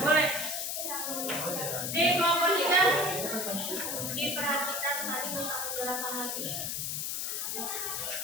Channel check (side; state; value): left; noise; hiss, 2 dB below the sound